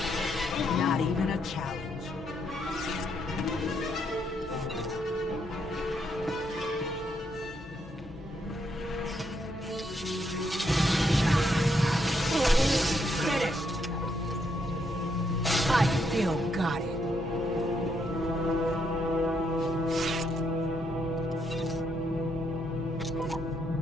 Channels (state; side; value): normal; both; correlation 0.76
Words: Not even a challenge. Finished. I still got it.